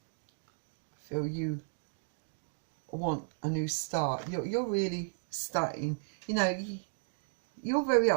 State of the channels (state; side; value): silent; left; digital silence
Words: you want a new start. You're really starting, you're very